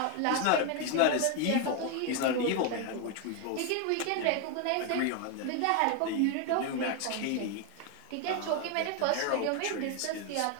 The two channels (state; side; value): different; both; correlation 0.01